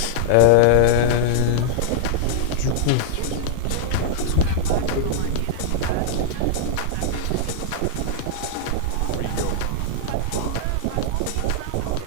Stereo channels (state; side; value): different; both; correlation -0.01